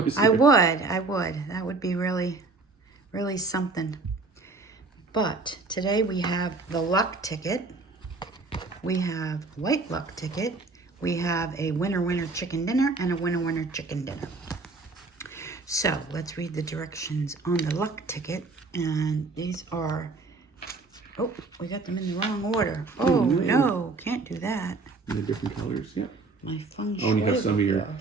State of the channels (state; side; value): quieter; left; 3.8 dB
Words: I would. That would be really, really something. But today we have the luck ticket. We have white luck ticket. We have a winner chicken dinner and a winner chicken dinner. So let's read the directions on the luck ticket. And these are, oh, we got them in the wrong order. Oh, no, can't do that. They're different colors, yep. My feng shui. Oh, and you have some of your